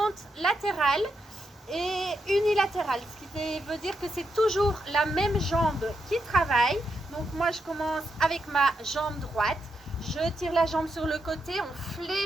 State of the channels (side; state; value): both; normal; correlation 0.83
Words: latérales et unilatérales, ce qui veut dire que c'est toujours la même jambe qui travaille. Donc moi je commence avec ma jambe droite. Je tire la jambe sur le côté, on